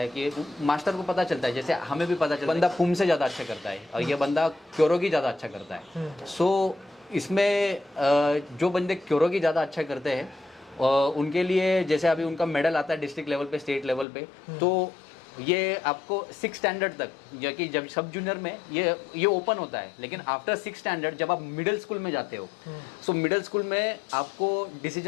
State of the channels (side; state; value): right; drops out; at 14.1 s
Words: कि जैसे हमें भी पता चलता है बंदा पुम से ज़्यादा अच्छा करता है और ये बंदा क्योरोगी ज़्यादा अच्छा करता है। सो इसमें जो बंदे क्योरोगी ज़्यादा अच्छा करते हैं उनके लिए, जैसे अभी उनका मेडल आता है डिस्ट्रिक्ट लेवल पे, स्टेट लेवल पे, तो ये आपको 6 स्टैंडर्ड तक, या कि जब सब जूनियर में ये ओपन होता है, लेकिन आफ्टर 6 स्टैंडर्ड जब आप मिडिल स्कूल में जाते हो, सो मिडिल स्कूल में आपको